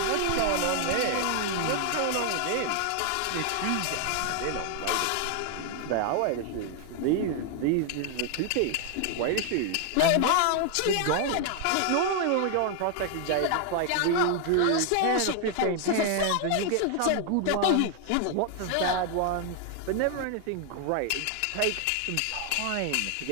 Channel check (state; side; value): different; both; correlation 0.00